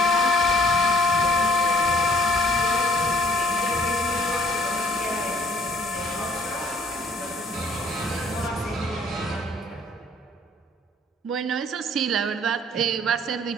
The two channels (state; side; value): normal; both; correlation 0.58